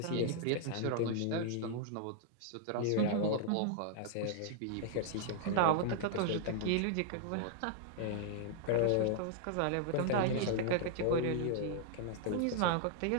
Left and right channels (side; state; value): both; different; correlation -0.01